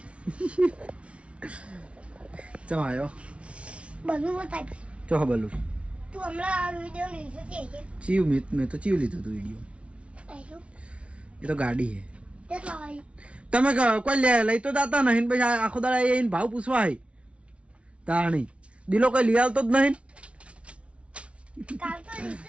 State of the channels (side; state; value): left; late; 0.061 ms